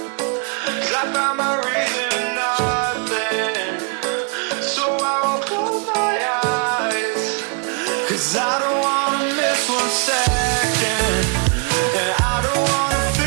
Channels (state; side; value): quieter; left; 35.9 dB